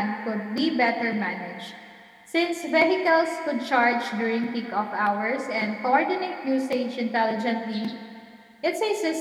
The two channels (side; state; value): both; identical; correlation 1.00